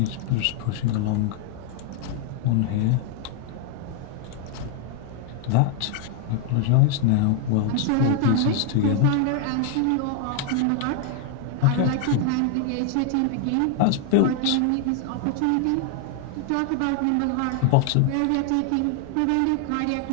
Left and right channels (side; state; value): both; different; correlation 0.00